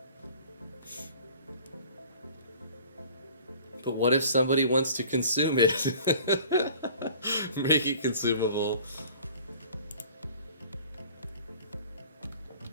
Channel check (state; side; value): inverted; both; correlation -0.48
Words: But what if somebody wants to consume it? Make it consumable.